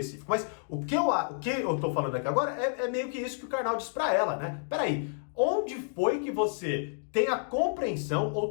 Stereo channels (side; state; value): right; silent; digital silence